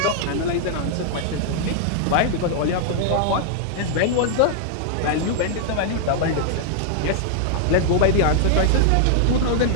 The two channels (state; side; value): different; both; correlation -0.01